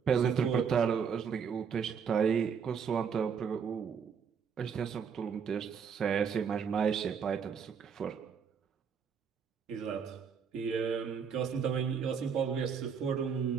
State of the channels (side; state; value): left; quieter; 6.8 dB